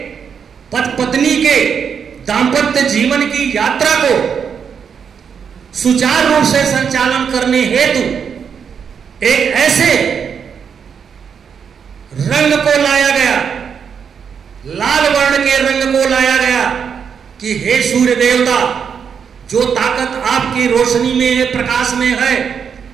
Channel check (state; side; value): quieter; left; 7.0 dB